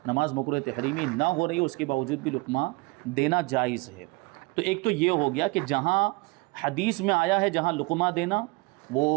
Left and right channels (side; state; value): left; quieter; 26.1 dB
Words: نماز مکروہ تحریمی نہ ہو رہی ہو، اس کے باوجود بھی لقمہ دینا جائز ہے۔ تو ایک تو یہ ہو گیا کہ جہاں حدیث میں آیا ہے جہاں لقمہ دینا، وہ